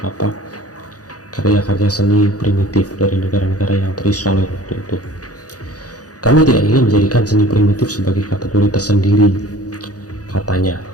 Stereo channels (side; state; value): right; late; 0.67 ms